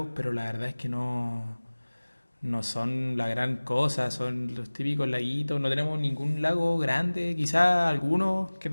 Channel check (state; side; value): inverted; both; correlation -1.00